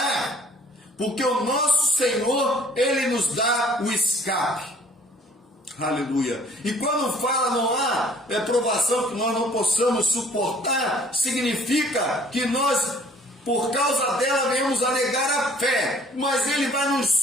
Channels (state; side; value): normal; both; correlation 0.56